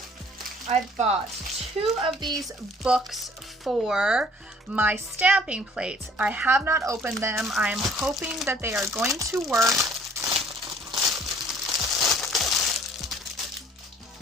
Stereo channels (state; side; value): normal; both; correlation 0.55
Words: I bought 2 of these books for my stamping plates. I have not opened them. I am hoping that they are going to work.